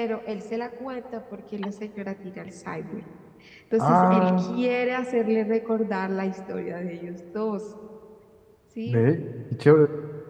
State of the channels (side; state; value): both; identical; correlation 1.00